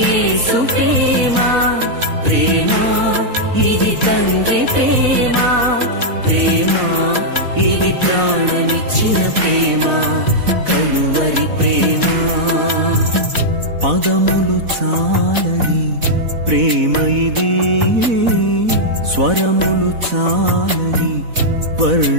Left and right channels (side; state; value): left; late; 4.1 ms